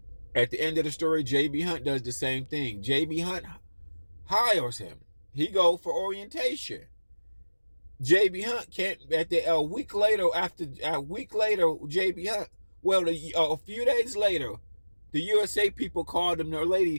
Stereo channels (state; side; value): inverted; both; correlation -1.00